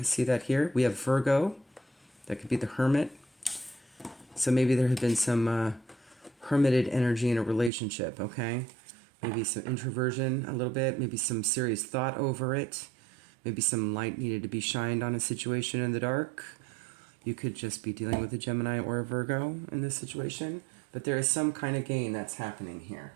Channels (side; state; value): left; drops out; at 7.7 s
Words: see that here. We have Virgo. That could be the Hermit. So maybe there had been some hermited energy in a relationship, okay? Maybe some introversion a little bit. Maybe some serious thought over it. Maybe some light needed to be shined on a situation in the dark. You could just be dealing with a Gemini or a Virgo in this situation. But there is some kind of gain that's happening here,